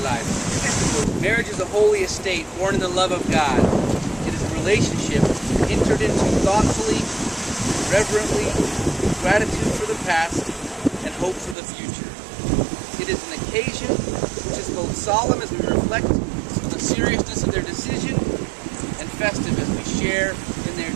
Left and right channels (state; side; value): drops out; left; at 11.6 s